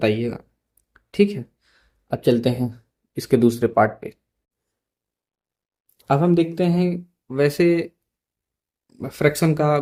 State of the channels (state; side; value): identical; both; correlation 1.00